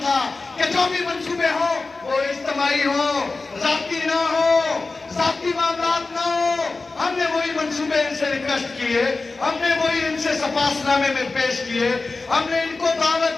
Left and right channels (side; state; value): right; quieter; 3.7 dB